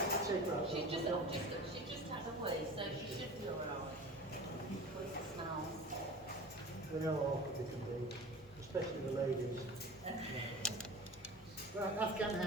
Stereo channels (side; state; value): both; normal; correlation 0.37